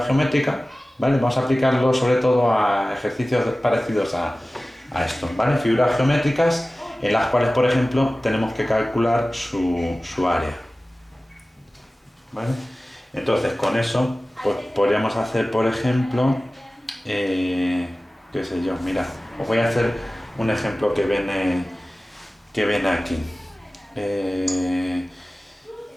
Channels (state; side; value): normal; both; correlation 0.97